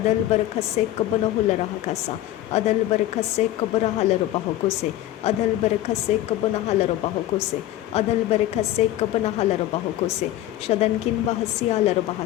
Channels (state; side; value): quieter; right; 14.0 dB